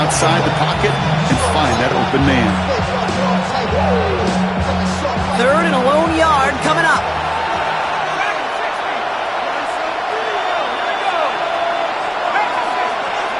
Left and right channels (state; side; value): identical; both; correlation 1.00